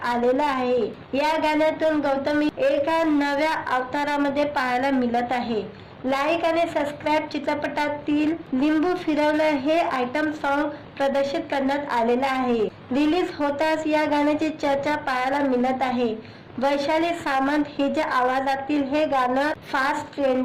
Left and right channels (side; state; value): both; identical; correlation 1.00